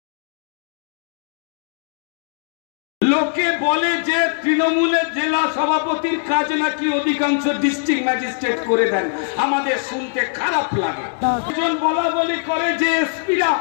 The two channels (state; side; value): silent; right; digital silence